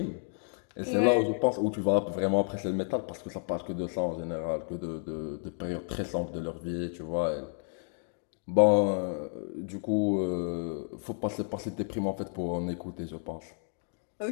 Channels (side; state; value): right; silent; 57 dB below the other